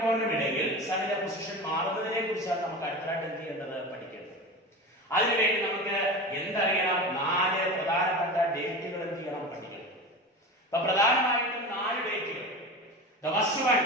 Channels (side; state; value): both; normal; correlation 0.29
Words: ഇടയിൽ സണ്ണിന്റെ പൊസിഷൻ മാറുന്നതിനെ കുറിച്ചാണ് നമുക്ക് അടുത്തായിട്ട് എന്ത് ചെയ്യേണ്ടത്? പഠിക്കേണ്ടത്. അതിനുവേണ്ടി നമുക്ക് എന്തറിയണം? 4 പ്രധാനപ്പെട്ട ഡേറ്റുകൾ എന്ത് ചെയ്യണം? പഠിക്കണം. അപ്പൊ പ്രധാനമായിട്ടും 4 ഡേറ്റുകൾ. The first one,